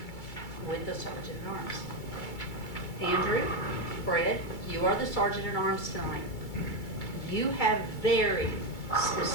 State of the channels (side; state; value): right; late; 2.3 ms